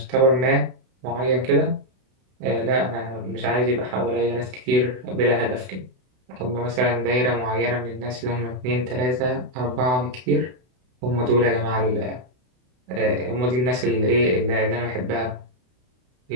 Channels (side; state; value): left; late; 32 ms